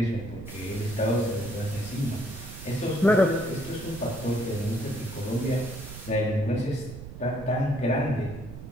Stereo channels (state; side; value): noise; right; rumble, 12 dB below the sound